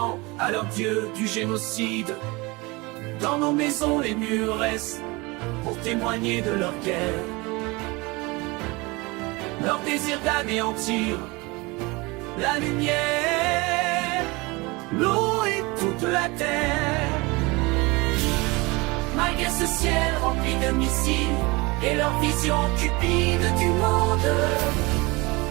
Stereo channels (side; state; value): left; quieter; 24.8 dB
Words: à leur dieu du génocide. Dans nos maisons les murs restent pour témoigner de leur guerre, leur désir d'anéantir la lumière, l'eau et toute la terre. Malgré ce ciel rempli de missiles et leur vision cupide du monde,